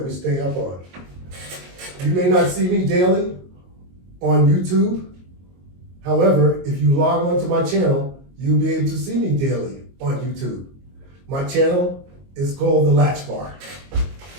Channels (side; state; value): left; late; 22 ms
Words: we stay up on. You may not see me daily on YouTube. However, if you log on to my channel, you'll be able to see me daily on YouTube. My channel is called The Latch Bar.